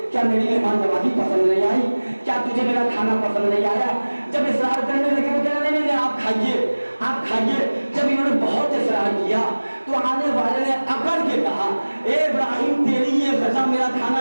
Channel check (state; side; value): inverted; both; correlation -1.00